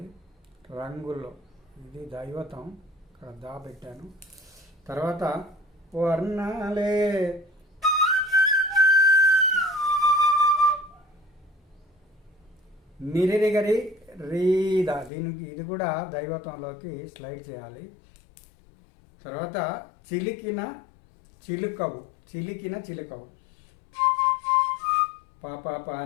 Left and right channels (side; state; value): right; drops out; at 15.1 s